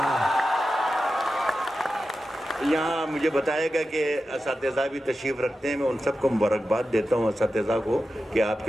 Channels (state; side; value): normal; both; correlation 0.91